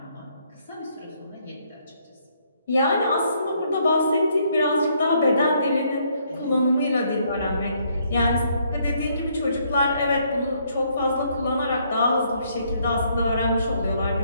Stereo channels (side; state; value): both; inverted; correlation -0.70